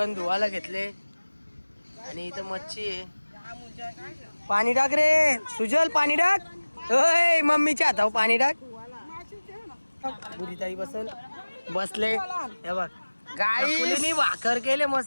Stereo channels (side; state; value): both; inverted; correlation -1.00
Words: धुवायला घेतले आणि इथं मच्छी आहे. पाणी टाक रे सुजल पाणी टाक. ओय मम्मीच्या हातावर पाणी टाक. बुरीताई बसले हे बघ गाईनी भाकर केले